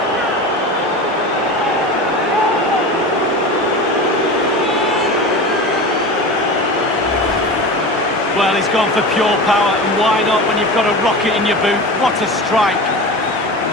Well, he's gone for pure power, and why not when you've got a rocket in your boot? What a strike.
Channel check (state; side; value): normal; both; correlation 0.30